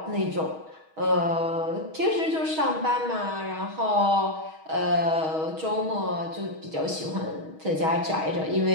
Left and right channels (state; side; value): late; left; 6.3 ms